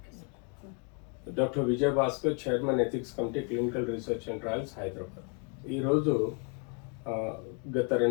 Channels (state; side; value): quieter; right; 37.7 dB